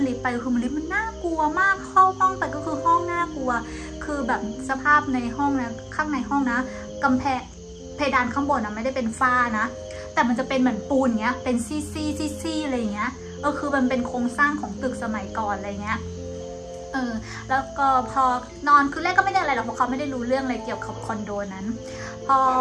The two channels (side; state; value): both; identical; correlation 1.00